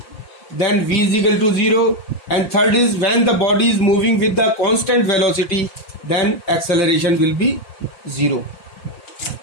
then v is equal to 0. And third is when the body is moving with the constant velocity, then acceleration will be 0.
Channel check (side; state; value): right; late; 5.7 ms